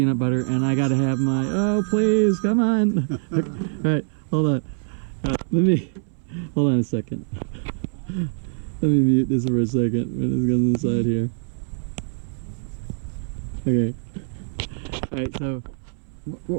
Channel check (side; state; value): left; silent; 63 dB below the other